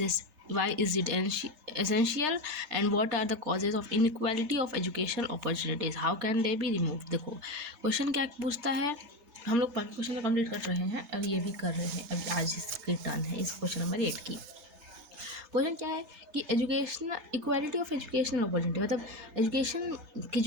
why is it essential and what are the causes of inequality of educational opportunities, how can they be removed। देखो question क्या पूछता है, हम लोग बाकी question complete कर रहे हैं और ये भी कर रहे हैं, अभी आज इसकी टर्न है इस क्वेश्चन नंबर 8 की। क्वेश्चन क्या है कि education equality of educational opportunity, मतलब एजुकेशन की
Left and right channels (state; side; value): late; left; 3.3 ms